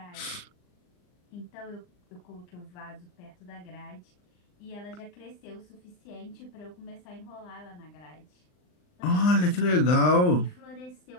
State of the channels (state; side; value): late; right; 39 ms